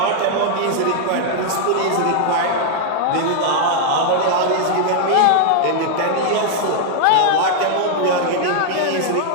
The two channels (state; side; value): different; both; correlation 0.00